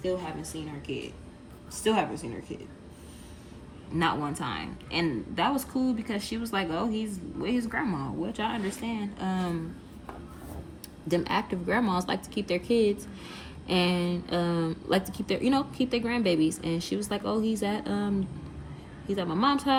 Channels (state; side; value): identical; both; correlation 1.00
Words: haven't seen her kid. Not one time. And that was cool because she was like, oh, he's with his grandma, which I understand. Them active grandmas like to keep their kids and like to keep their grandbabies. And she was like, oh, he's at my mom's